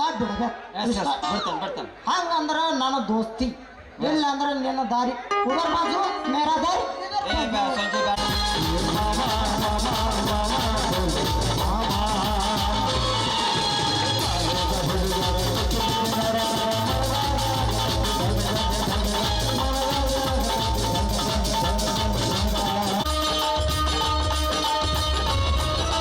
ಬಿಡ್ಬೇಕು. ಬಿಡ್ತಾನೆ ಹಂಗಂದ್ರೆ ನನ್ನ ದೋಸ್ತಿ ಇಲ್ಲ ಅಂದ್ರೆ ನಿನ್ನ ದಾರಿ ಉದರ್ ಬಾಜು ಮೇರಾ ದಾರಿ. ಸಂಜೆ ಬೇಡ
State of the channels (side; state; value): both; identical; correlation 1.00